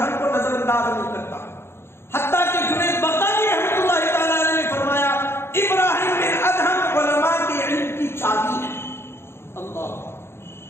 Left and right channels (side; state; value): right; late; 0.12 ms